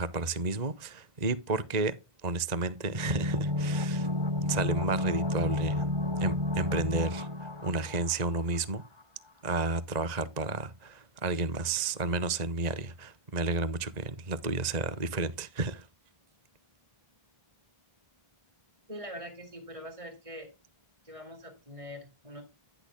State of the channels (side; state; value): left; late; 1.9 ms